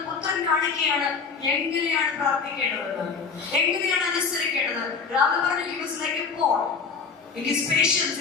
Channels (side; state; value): right; quieter; 5.3 dB